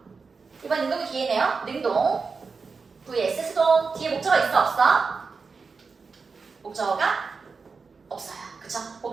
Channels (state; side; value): quieter; left; 4.8 dB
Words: 이번 능동이 뒤에네요. 능동 vs 수동. 뒤에 목적어 있어 없어? 목적어가 없어요. 그쵸?